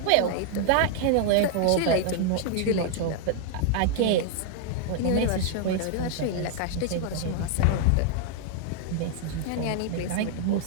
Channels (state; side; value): different; both; correlation 0.00